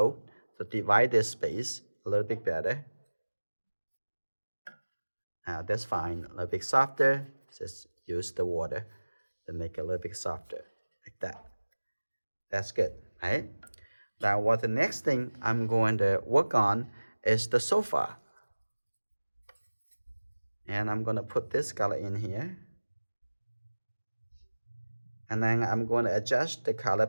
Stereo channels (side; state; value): both; inverted; correlation -1.00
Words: to divide this space a little bit better. Now that's fine. A little bit softer. Just use the water to make it a little bit softer, like that. That's good, right? Now what the next thing I'm going to work on is the sofa. And I'm going to put this color in here. And then I'm going to adjust the color